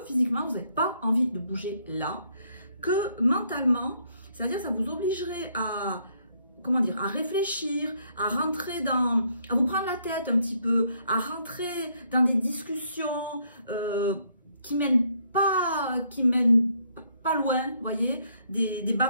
physiquement vous n'avez pas envie de bouger là, que mentalement, c'est-à-dire ça vous obligerait à, comment dire, à réfléchir, à rentrer à vous prendre la tête un petit peu, à rentrer dans des discussions qui mènent pas loin, vous voyez, des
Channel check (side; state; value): both; inverted; correlation -0.70